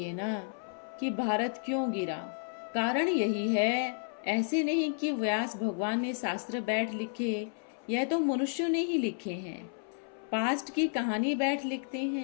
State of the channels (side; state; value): right; silent; 57 dB below the other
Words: ना कि भारत क्यों गिरा। कारण यही है। ऐसे नहीं कि व्यास भगवान ने शास्त्र बैठ लिखे, यह तो मनुष्यों ने ही लिखे हैं। पास्ट की कहानी बैठ लिखते